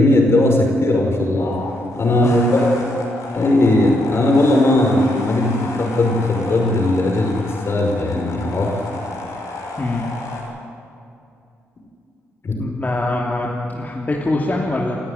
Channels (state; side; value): normal; both; correlation 0.78